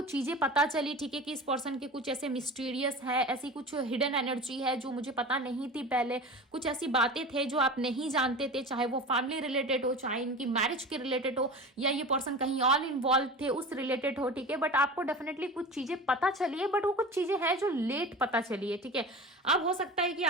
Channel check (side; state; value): both; normal; correlation 0.33